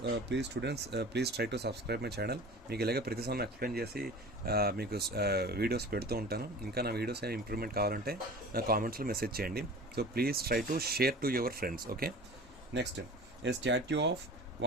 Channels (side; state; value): both; normal; correlation 0.39